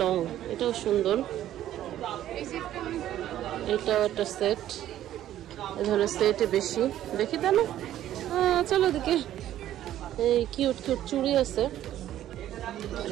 লং, এটাও সুন্দর। এটাও একটা সেট, এই ধরনের সেটে বেশি দেখি তা না। চলো দেখি, এই কিউট কিউট চুড়ি আছে।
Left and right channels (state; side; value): quieter; left; 12.5 dB